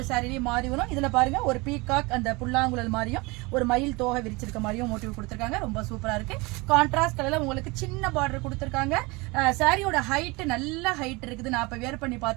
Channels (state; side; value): quieter; left; 25.3 dB